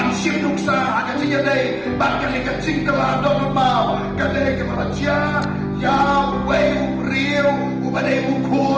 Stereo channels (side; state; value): both; identical; correlation 1.00